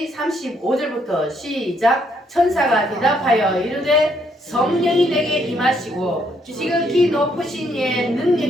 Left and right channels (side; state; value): both; normal; correlation 0.71